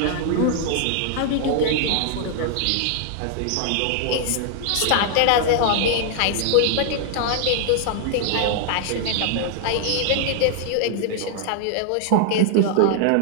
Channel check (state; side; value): different; both; correlation 0.00